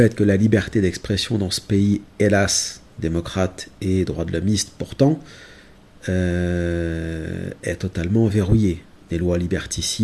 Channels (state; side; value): identical; both; correlation 1.00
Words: que la liberté d'expression dans ce pays, hélas, démocrate et droit de l'hommiste pourtant, est totalement verrouillée. Des lois